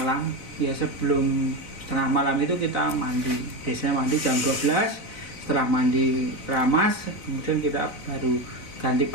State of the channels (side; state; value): right; late; 3.8 ms